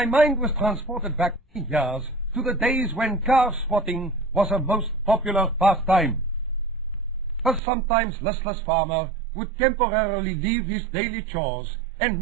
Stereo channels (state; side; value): drops out; left; at 7.6 s